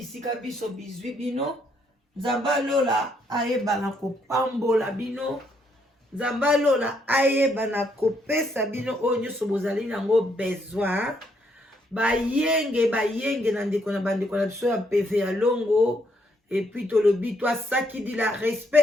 biso bizwi bino. Nzamba lola ayeba na kopambola bino. Nzamba lola ayeba na kopesa bino oyo nyonso bozali nango besoin. Bayenge na ndeko na bandeko na biso ya PV ya longo. Et puis tolobi toi saki di la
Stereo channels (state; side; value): normal; both; correlation 0.72